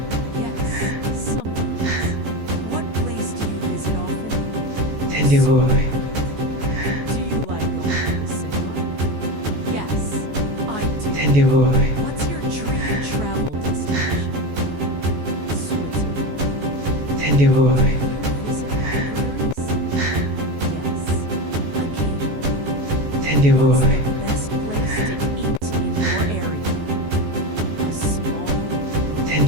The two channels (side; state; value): left; late; 14 ms